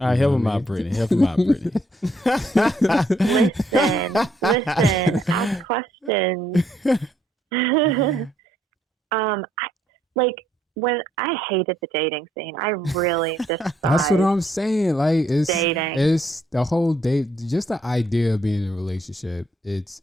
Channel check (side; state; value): both; normal; correlation 0.70